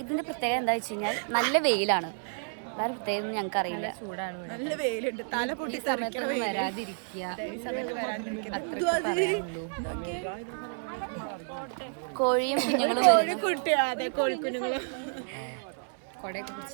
ഇതിന്റെ പ്രത്യേകത എന്താ വെച്ച് കഴിഞ്ഞാൽ നല്ല വെയിലാണ്, വേറെ പ്രത്യേകത ഞങ്ങൾക്ക് അറിയില്ല. ചൂടാണ്, നല്ല വെയിലുണ്ട്, തല പൊട്ടി വരാതിരിക്കുക, കോഴിയും കുഞ്ഞുങ്ങളും കോഴിക്കുഞ്ഞുങ്ങളെ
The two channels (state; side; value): silent; left; 58 dB below the other